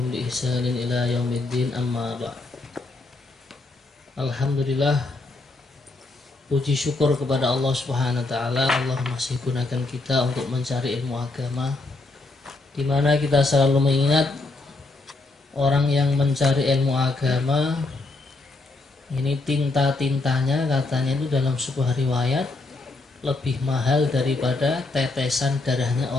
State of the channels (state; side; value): quieter; right; 3.2 dB